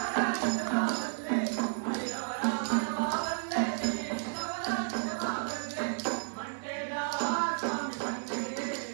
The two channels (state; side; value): silent; left; digital silence